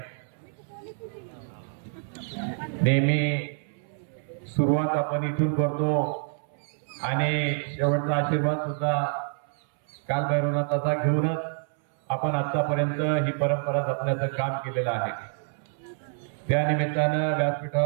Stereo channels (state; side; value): silent; left; 60 dB below the other